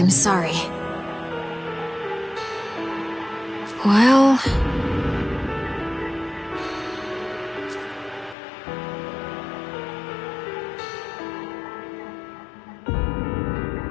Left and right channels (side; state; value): right; drops out; at 8.3 s